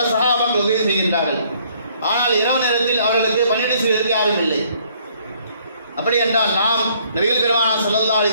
சஹாபாக்கள் உதவி செய்கின்றார்கள். ஆனால் இரவு நேரத்தில் அவர்களுக்கு பணிவிடை செய்வதற்கு யாரும் இல்லை. அப்படி என்றால் நாம் நபிகள் பெருமானார் ஸல்லல்லாஹு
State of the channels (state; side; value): inverted; both; correlation -0.63